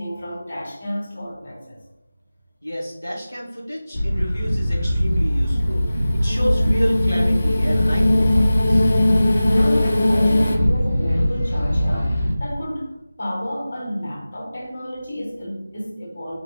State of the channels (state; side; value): inverted; both; correlation -0.96